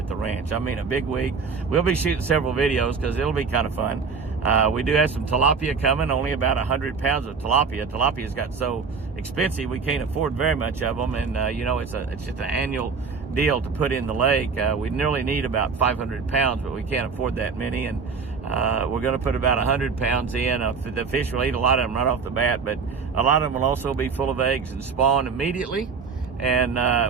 the ranch. I mean, a big week. We'll be shooting several videos because it'll be kind of fun. We do have some tilapia coming, only about 100 pounds of tilapia. Tilapia's got so expensive we can't afford very much of them, and you know, it's just an annual deal to put in the lake. We nearly need about 500 pounds, but we can't afford that many, and we're going to put about 100 pounds in. The fish will eat a lot of them right off the bat, but a lot of them will also be full of eggs and spawn immediately. And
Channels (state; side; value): quieter; left; 5.3 dB